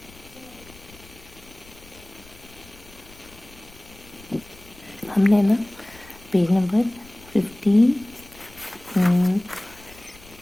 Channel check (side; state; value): left; noise; rumble, 22 dB below the sound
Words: हमने ना पेज नंबर 52